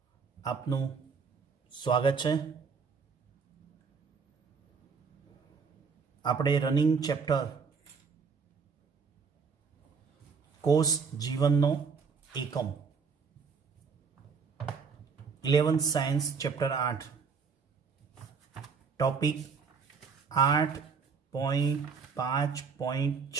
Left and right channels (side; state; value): left; quieter; 5.6 dB